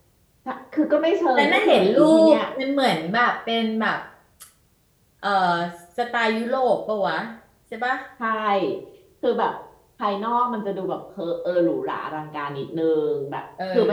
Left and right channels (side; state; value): both; identical; correlation 1.00